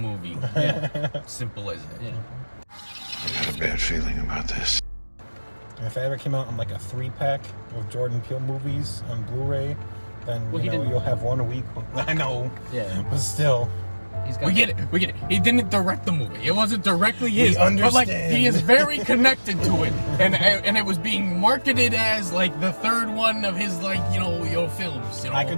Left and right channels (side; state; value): both; inverted; correlation -1.00